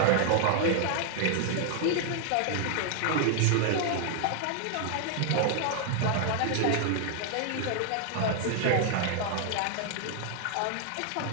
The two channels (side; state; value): both; different; correlation 0.00